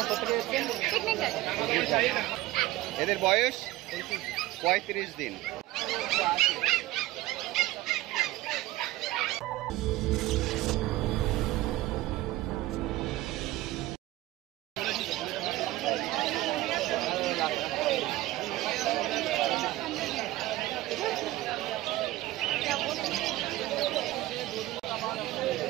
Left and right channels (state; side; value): quieter; left; 16.9 dB